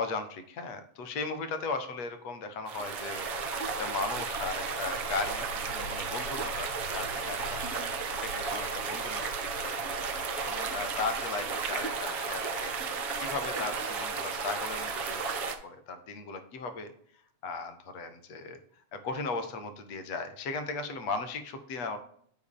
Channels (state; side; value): late; right; 7.3 ms